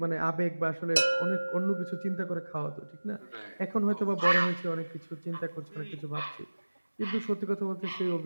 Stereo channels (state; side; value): inverted; both; correlation -1.00